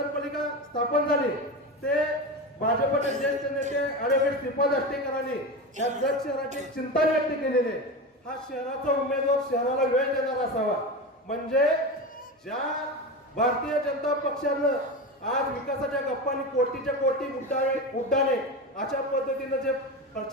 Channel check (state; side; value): normal; both; correlation 0.22